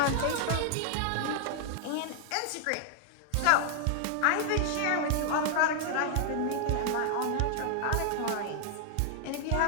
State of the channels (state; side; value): different; both; correlation 0.00